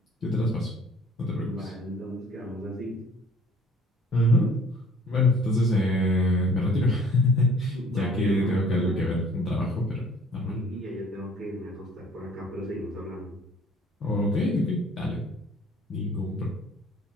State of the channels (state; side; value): normal; both; correlation 0.53